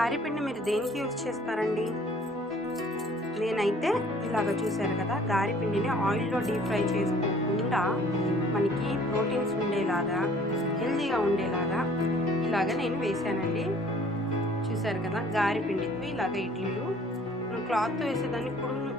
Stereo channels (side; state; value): both; normal; correlation 0.55